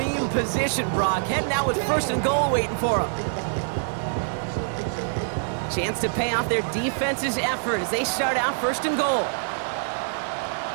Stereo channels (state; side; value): silent; left; digital silence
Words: position, Brock. Heading out with first and goal waiting for them. Chance to pay off their defense's effort as they start out first and goal.